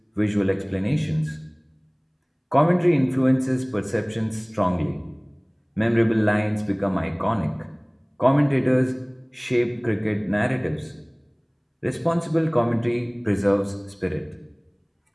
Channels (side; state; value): both; identical; correlation 1.00